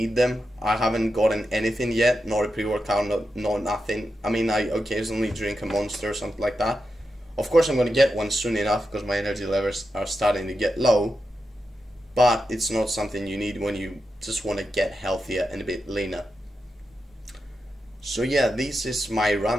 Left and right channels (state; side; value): normal; both; correlation 0.88